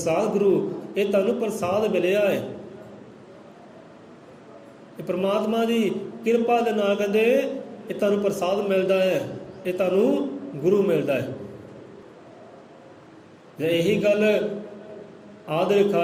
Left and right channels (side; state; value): both; identical; correlation 1.00